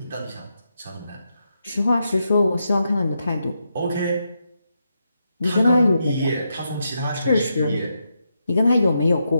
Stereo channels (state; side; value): inverted; both; correlation -0.83